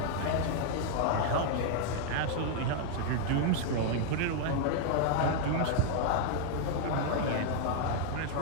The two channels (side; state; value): both; different; correlation 0.00